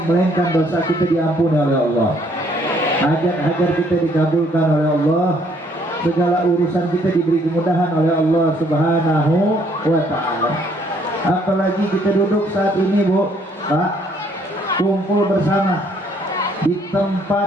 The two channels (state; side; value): normal; both; correlation 0.65